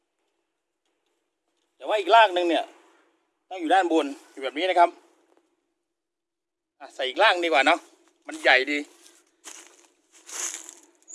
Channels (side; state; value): both; identical; correlation 1.00